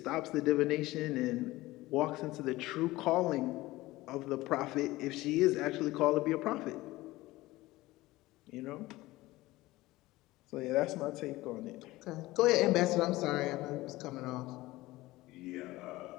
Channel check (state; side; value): quieter; right; 18.6 dB